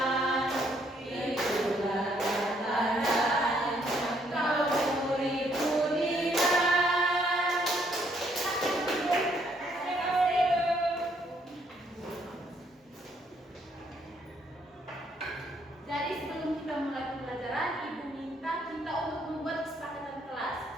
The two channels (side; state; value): both; normal; correlation 0.69